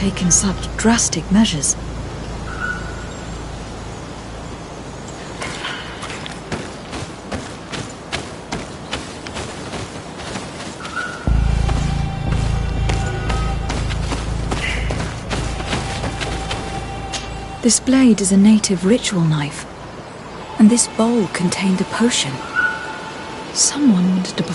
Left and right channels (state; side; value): identical; both; correlation 1.00